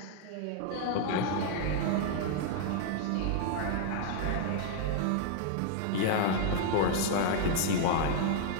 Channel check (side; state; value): both; different; correlation 0.00